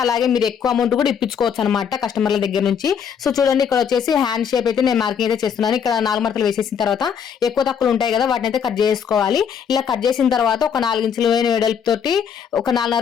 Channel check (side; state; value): right; quieter; 7.5 dB